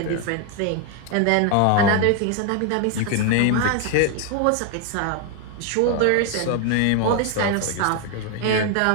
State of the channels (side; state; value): both; different; correlation 0.01